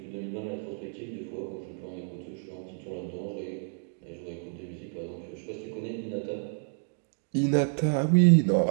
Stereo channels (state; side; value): silent; left; 58 dB below the other